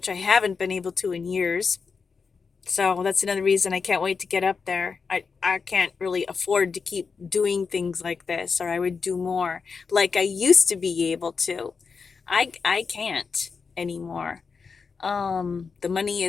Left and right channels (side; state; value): right; quieter; 5.3 dB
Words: I haven't been able to in years. So that's another reason I can't wait to get up there. I can't really afford to keep doing things like this, or I would do more like I used to be able to. I can't anymore. The money